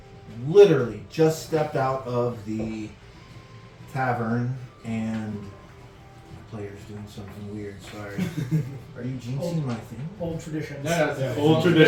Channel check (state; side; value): identical; both; correlation 1.00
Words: literally just stepped out of the tavern, and my player's doing something weird. Sorry. Are you jinxing my thing? Old traditions. No, it's old